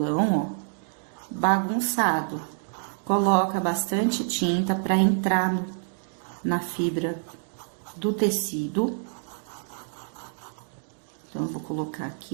ó, bagunçado. Coloca bastante tinta para entrar na fibra do tecido. Então, eu vou colocar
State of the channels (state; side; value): silent; left; digital silence